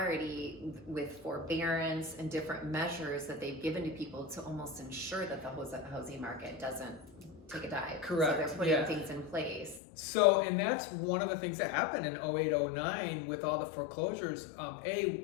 with forbearance and different measures that they've given to people to almost ensure that the housing market doesn't take a dive. Correct. So they're putting things in place. So, and that's one of the things that happened in 08, 09 with all the foreclosures.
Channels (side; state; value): right; drops out; at 9.8 s